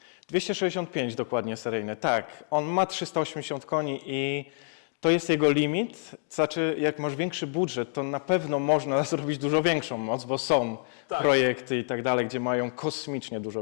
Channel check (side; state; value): right; silent; digital silence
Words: 265 dokładnie seryjny, tak. On ma 380 koni i to jest jego limit. Znaczy, jak masz większy budżet, to na pewno można zrobić dużo większą moc, bo są projekty i tak dalej, gdzie mają kosmicznie